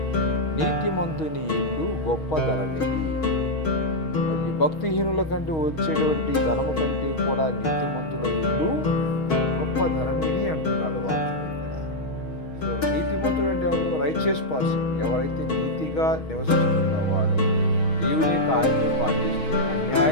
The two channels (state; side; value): late; right; 6.3 ms